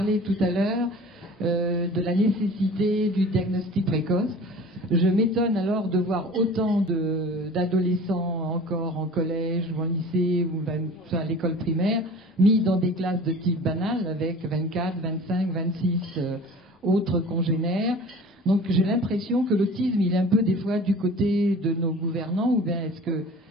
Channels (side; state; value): both; normal; correlation 0.42